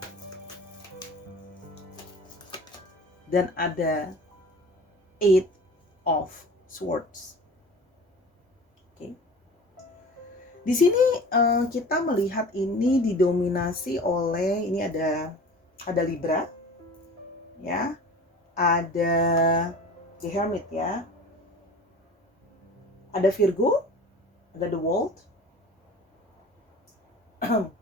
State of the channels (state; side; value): normal; both; correlation 0.40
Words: dan ada Eight of Swords. Oke. Di sini kita melihat ini didominasi oleh, ini ada Libra, ya, ada The Hermit ya, ada Virgo, ada The World,